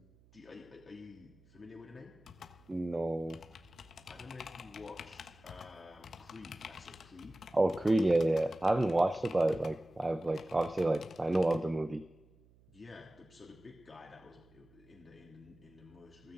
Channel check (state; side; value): noise; right; hum, 29 dB below the sound